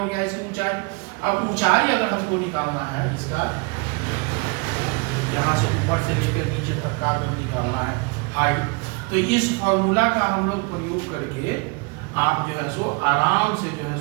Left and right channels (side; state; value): left; quieter; 29.7 dB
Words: गया इसकी ऊंचाई। अब ऊंचाई अगर हमको निकालना है इसका, यहाँ से ऊपर से लेकर नीचे तक का निकालना है हाइट, तो इस फॉर्मूला का हम लोग प्रयोग करके आप जो है सो आराम से जो है